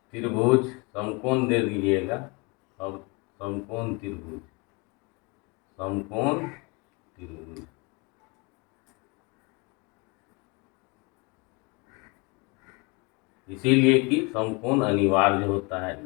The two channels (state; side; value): quieter; right; 28.4 dB